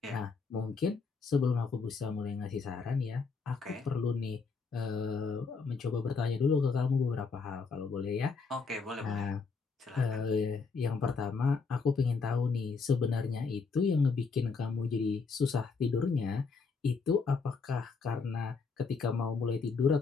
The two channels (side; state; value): right; quieter; 4.8 dB